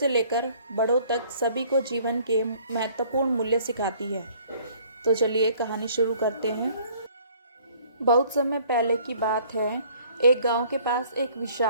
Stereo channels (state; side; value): inverted; both; correlation -0.57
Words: लेकर बड़ों तक सभी को जीवन के महत्वपूर्ण मूल्य सिखाती है। तो चलिए कहानी शुरू करते हैं। बहुत समय पहले की बात है। एक गांव के पास एक